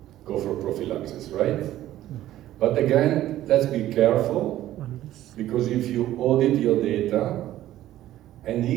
go for prophylaxis, right? But again, let's be careful, because if you audit your data, and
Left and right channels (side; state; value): left; quieter; 13.7 dB